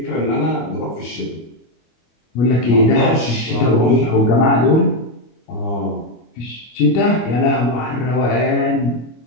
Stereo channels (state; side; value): late; right; 25 ms